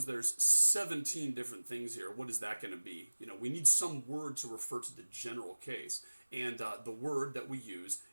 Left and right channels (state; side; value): inverted; both; correlation -1.00